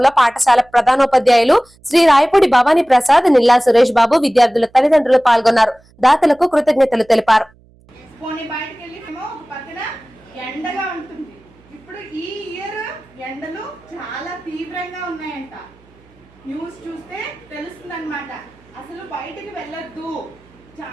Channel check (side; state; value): right; noise; hum, 30 dB below the sound